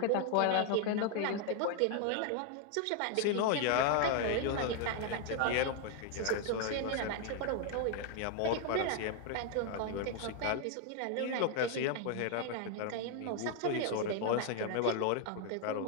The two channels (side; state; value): both; different; correlation 0.00